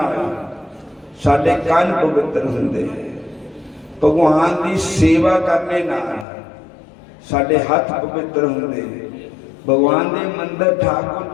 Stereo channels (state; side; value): drops out; right; at 6.2 s